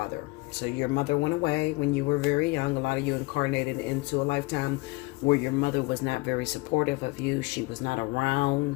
So your mother went away when you were very young. A lot of you incarnated into a lifetime where your mother was not very supportive of you. She was not around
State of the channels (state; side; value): quieter; right; 24.2 dB